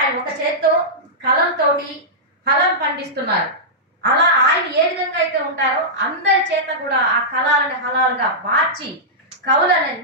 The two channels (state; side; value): normal; both; correlation -0.13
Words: ఒక చేత్తో కలంతోటి ఫలం పండిస్తున్నారు. అలా ఆయన ఏ విధంగా అయితే ఉంటారో అందరి చేత కూడా ఆ కళాలని హలాలుగా మార్చి